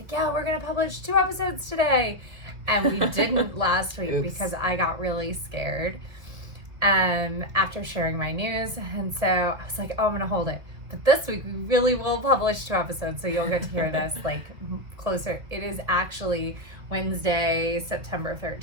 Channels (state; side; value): late; left; 2.1 ms